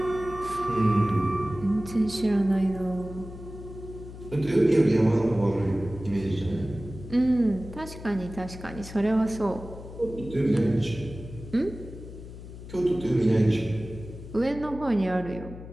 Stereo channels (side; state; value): left; noise; hum, 13 dB below the sound